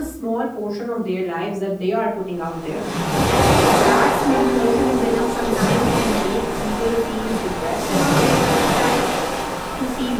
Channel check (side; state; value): both; identical; correlation 1.00